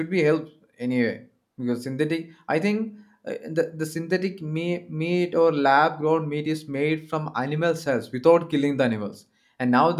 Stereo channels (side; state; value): both; identical; correlation 1.00